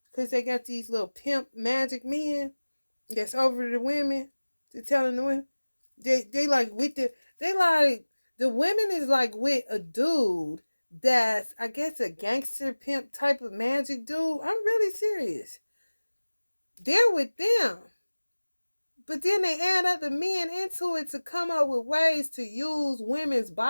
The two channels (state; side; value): inverted; both; correlation -1.00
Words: Because they got these little pimp magic men that's over the women. To telling the women, They like with they like the women is like with a dude that's I guess a gangster pimp type of magic dude. I'm really serious. They're with them. But then they add other men into it to come up with ways to use women's